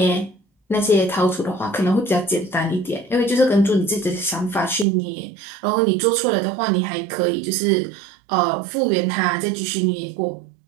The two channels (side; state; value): left; drops out; at 4.9 s